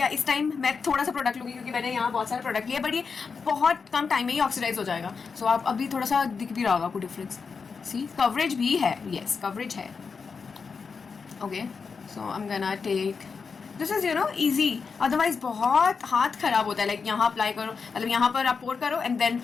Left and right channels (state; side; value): quieter; right; 5.3 dB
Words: इस time मैं थोड़ा सा product लूँगी क्योंकि मैंने यहाँ बहुत सारे प्रोडक्ट लिए, बट ये बहुत कम टाइम में ही ऑक्सीडाइज हो जाएगा. सो आप अभी थोड़ा सा दिख भी रहा होगा आपको डिफरेंस. सी, कवरेज भी है. यस, कवरेज है. Okay, so I am gonna take this is easy. Otherwise बहुत हाथ खराब होता है. लाइक यहाँ अप्लाई करो, मतलब यहाँ पर आप पोर करो एंड देन